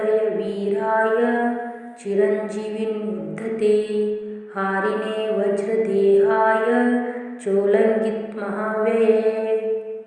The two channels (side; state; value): both; identical; correlation 1.00